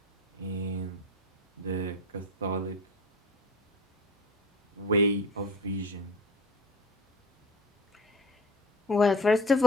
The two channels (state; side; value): normal; both; correlation 0.36